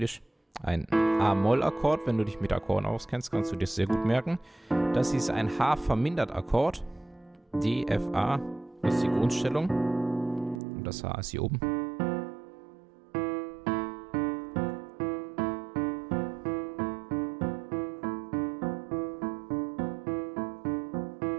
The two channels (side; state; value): left; drops out; at 10.6 s